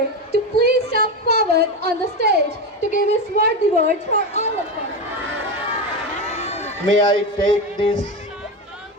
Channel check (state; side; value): normal; both; correlation 0.17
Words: to please step forward on the stage to give his worthy words for all of us. May I take this